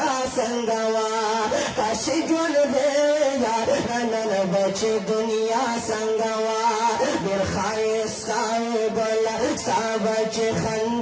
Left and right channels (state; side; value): identical; both; correlation 1.00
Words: څنګه وه کاش چې ژوندی یاره نن به چې دنیا څنګه وه ډېر ښایسته وې ګله ستا به چې